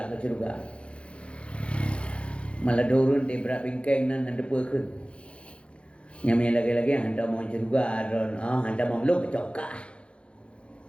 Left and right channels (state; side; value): late; right; 0.059 ms